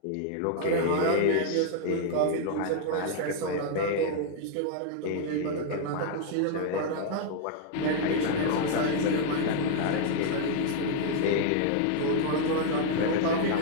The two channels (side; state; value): both; different; correlation 0.00